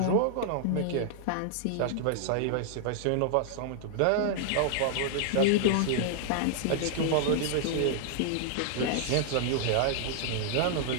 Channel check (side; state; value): both; different; correlation -0.01